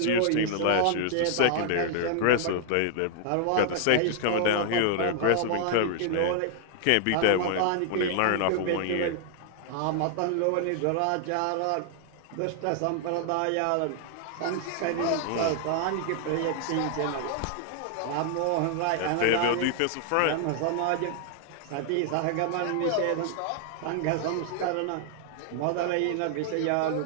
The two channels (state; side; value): different; both; correlation 0.00